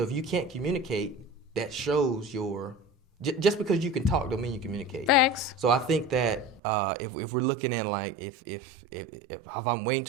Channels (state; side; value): drops out; left; at 6.6 s